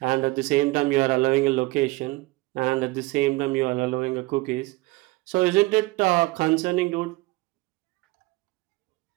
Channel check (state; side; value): quieter; left; 21.9 dB